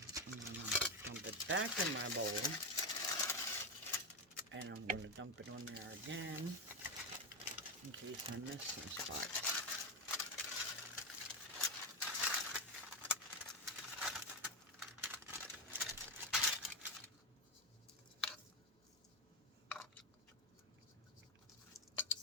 I'm going to dump it back in my bowl. And I'm going to dump it on there again in case I miss some spots.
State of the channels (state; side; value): normal; both; correlation 0.12